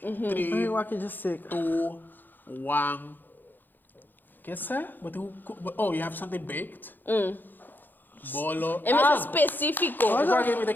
Ai, 3, eu aqui já sei. 2, 1. Que é? Oh, you have something baked? Bolo. É mais específico. Agora que me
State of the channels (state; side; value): late; right; 0.089 ms